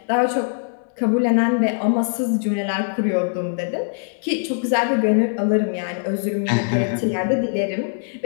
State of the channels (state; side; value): silent; right; digital silence